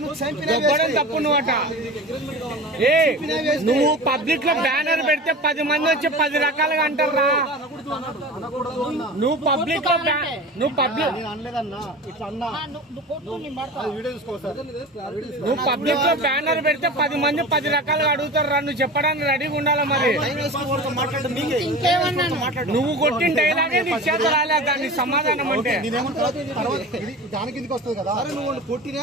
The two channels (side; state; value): both; normal; correlation 0.33